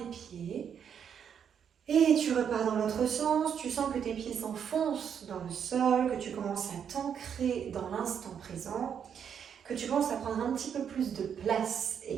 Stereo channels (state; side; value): quieter; left; 7.9 dB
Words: pieds. Et tu repars dans l'autre sens, tu sens que tes pieds s'enfoncent dans le sol, que tu commences à t'ancrer dans l'instant présent, que tu commences à prendre un petit peu plus de place